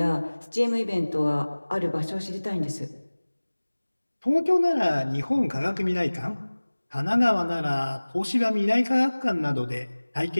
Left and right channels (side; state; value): both; inverted; correlation -1.00